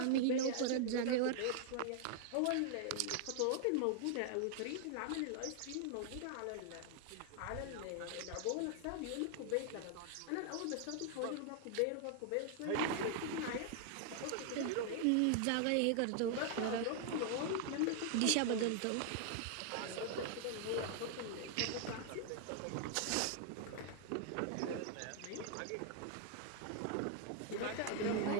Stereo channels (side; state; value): both; different; correlation 0.00